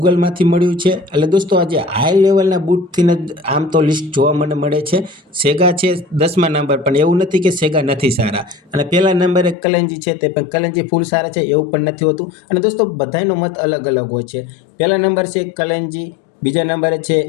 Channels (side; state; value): right; drops out; at 9.6 s